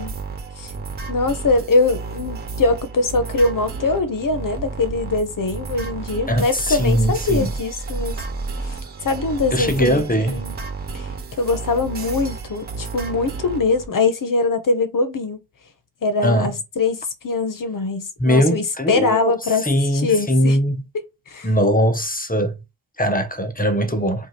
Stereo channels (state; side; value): normal; both; correlation 0.02